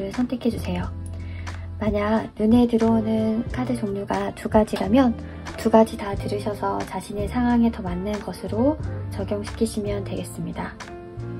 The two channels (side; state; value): both; identical; correlation 1.00